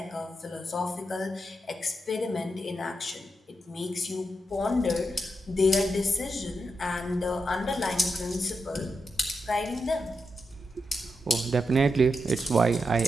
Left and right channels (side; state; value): both; normal; correlation 0.85